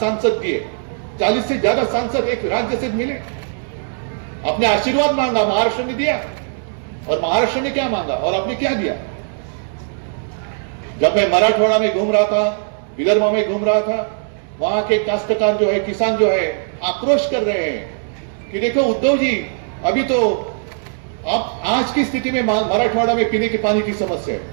दिए, 40 से ज्यादा सांसद एक राज्य से मिले। आपने आशीर्वाद मांगा, महाराष्ट्र ने दिया, और महाराष्ट्र ने क्या मांगा और आपने क्या दिया? जब मैं मराठवाड़ा में घूम रहा था, विदर्भ में घूम रहा था, वहां के काश्तकार जो है, किसान जो है, आक्रोश कर रहे हैं कि देखो उद्धव जी, अभी तो आप आज की स्थिति में मराठवाड़ा में पीने के पानी की समस्या है।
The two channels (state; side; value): silent; left; 65 dB below the other